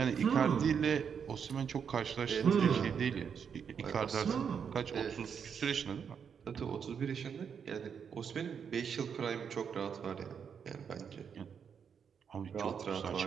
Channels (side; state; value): left; quieter; 7.1 dB